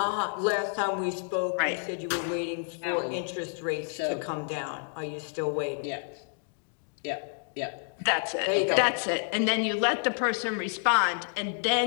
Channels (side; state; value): right; silent; digital silence